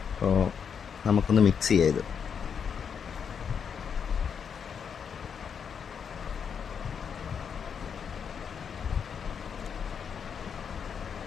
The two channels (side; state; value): right; quieter; 7.0 dB